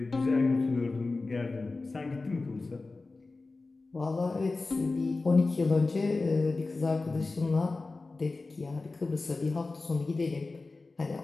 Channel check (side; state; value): right; quieter; 3.6 dB